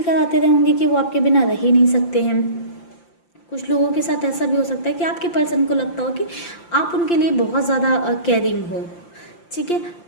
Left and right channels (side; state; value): right; late; 5.8 ms